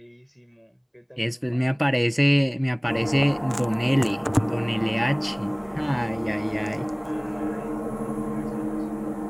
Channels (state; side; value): identical; both; correlation 1.00